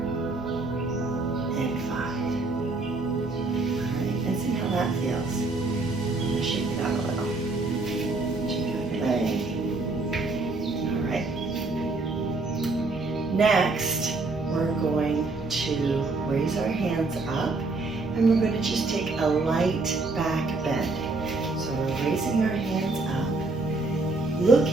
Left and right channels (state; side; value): quieter; left; 3.4 dB